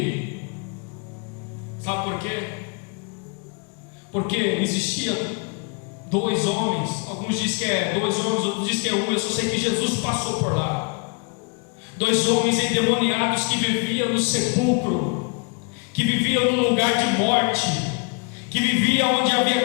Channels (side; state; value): right; quieter; 34.6 dB